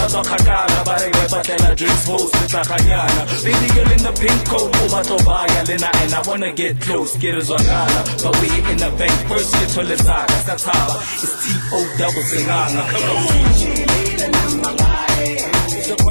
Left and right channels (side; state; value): both; inverted; correlation -1.00